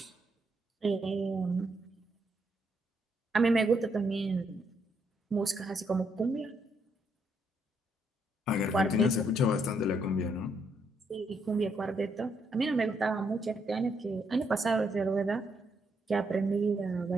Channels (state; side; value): normal; both; correlation 0.76